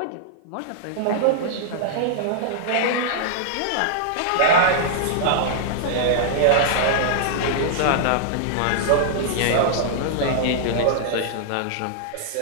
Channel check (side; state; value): both; different; correlation -0.01